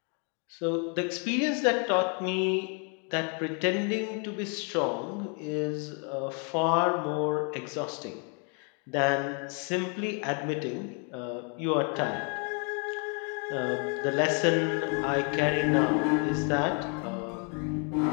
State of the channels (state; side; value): quieter; right; 38.3 dB